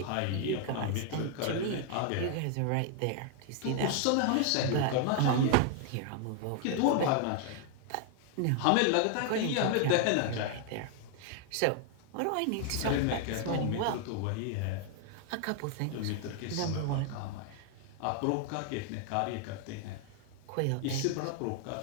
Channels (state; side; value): different; both; correlation 0.00